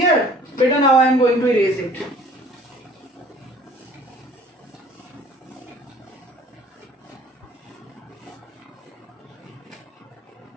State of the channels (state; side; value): normal; both; correlation 0.51